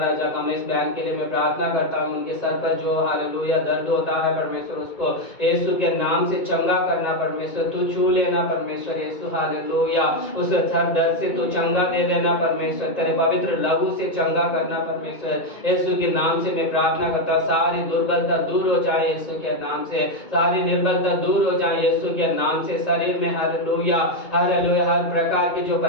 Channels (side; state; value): right; late; 2.2 ms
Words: कमलेश बहन के लिए मैं प्रार्थना करता हूँ, उनके सर पर जो हालेलुया दर्द होता है परमेश्वर उसको यीशु के नाम से चंगा करना परमेश्वर, तू छू लेना परमेश्वर यीशु। हालेलुया उस सर दर्द से तू चंगा दे देना परमेश्वर, तेरे पवित्र लहू से चंगा करना परमेश्वर यीशु के नाम से मैं प्रार्थना करता। सारी दुर्बलता दूर हो जाए यीशु के नाम से, सारी निर्बलता दूर हो जाए यीशु के नाम से। शरीर में हालेलुया हालेलुया हर प्रकार की जो